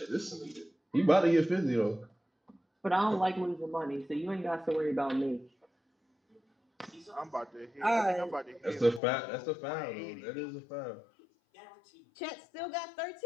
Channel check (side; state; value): right; drops out; at 9.0 s